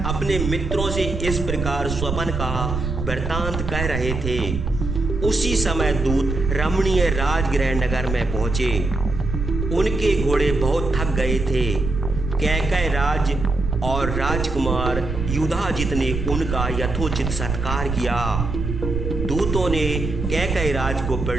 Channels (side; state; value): right; noise; rumble, 4 dB below the sound